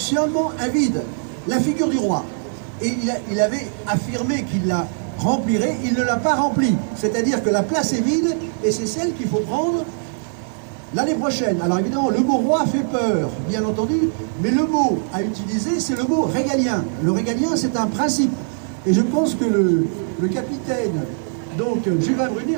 un vide, la figure du roi. Et il avait affirmé qu'il la remplirait, il ne l'a pas remplie. C'est-à-dire que la place est vide et c'est celle qu'il faut prendre l'année prochaine. Alors évidemment, le mot roi fait peur, bien entendu, mais le mot à utiliser, c'est le mot régalien. Le régalien, c'est un principe. Et je pense que le capitaine, donc Juvin Brunet,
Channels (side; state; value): left; silent; 65 dB below the other